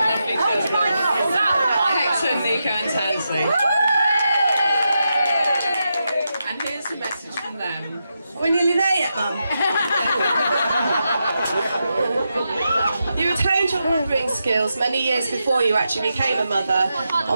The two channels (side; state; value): both; inverted; correlation -0.86